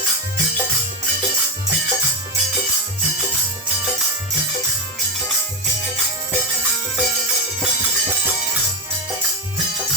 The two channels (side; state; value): both; normal; correlation 0.11